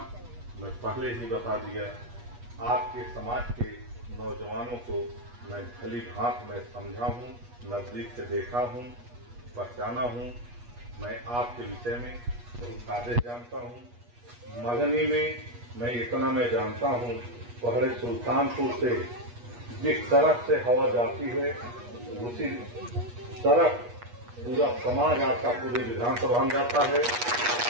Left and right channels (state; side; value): late; left; 8.3 ms